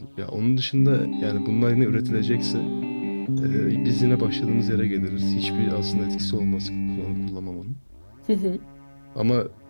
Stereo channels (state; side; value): inverted; both; correlation -1.00